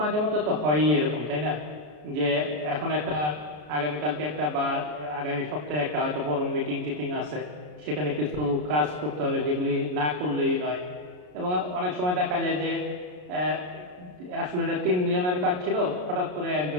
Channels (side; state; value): left; late; 33 ms